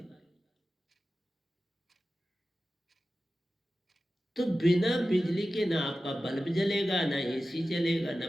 तो बिना बिजली के ना आपका बल्ब जलेगा, ना एसी चलेगा, ना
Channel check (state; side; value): normal; both; correlation 0.94